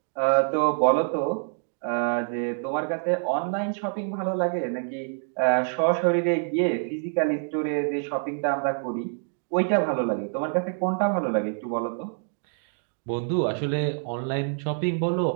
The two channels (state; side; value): silent; left; 61 dB below the other